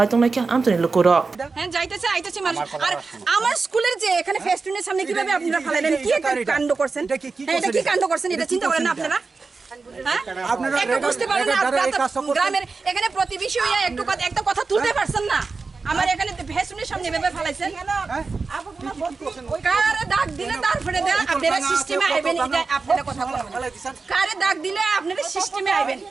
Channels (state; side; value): quieter; left; 4.3 dB